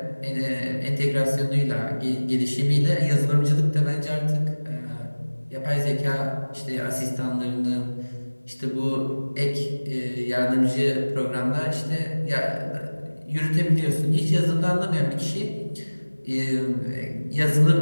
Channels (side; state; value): both; inverted; correlation -1.00